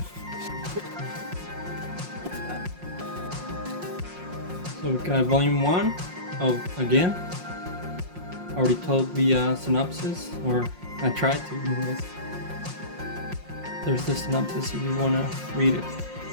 So we got volume 1 of Again. I already told the synopsis, or I tried to anyways. There's the synopsis if you want to read it.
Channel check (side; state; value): left; late; 5.6 ms